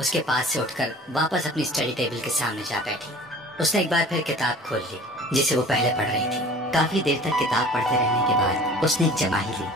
उसके पास से उठकर वापस अपनी स्टडी टेबल के सामने जा बैठी। उसने एक बार फिर किताब खोल ली जिसे वो पहले पढ़ रही थी। काफी देर तक किताब पढ़ते रहने के बाद उसने एक जमाही ली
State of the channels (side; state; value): both; normal; correlation 0.45